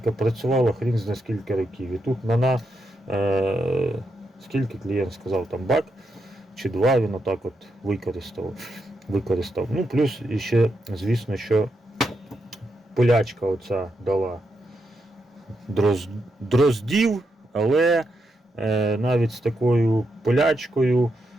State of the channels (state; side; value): normal; both; correlation 0.83